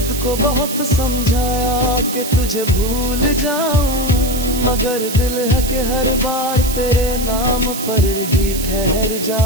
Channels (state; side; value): noise; right; hiss, 8 dB below the sound